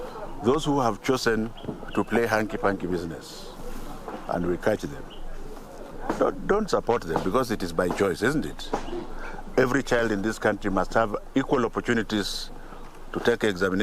Those who have chosen to play hanky-panky business, and we catch them, don't support them, because it is by choice, isn't it? Every child in this country must have equal opportunities to take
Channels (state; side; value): identical; both; correlation 1.00